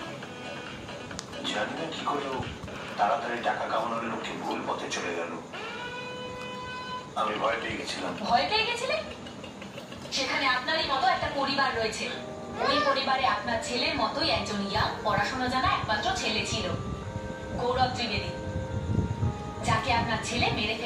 জানি না কি করে তাড়াতাড়ি টাকা কামানোর লক্ষ্যে ভুল পথে চলে গেল। আমি ভয় পেয়ে গেছিলাম। ভয় পেয়ে গেছিলেন? সেখানে আপনারই মতো একটা পরিবার রয়েছে। ওই পরিবারে আপনার ছেলের মতোই একজন ইয়াং, পড়াশোনা জানা একমাত্র ছেলে ছিল, গৌরব ত্রিবেদী, যাকে আপনার ছেলে মেরে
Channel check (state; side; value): identical; both; correlation 1.00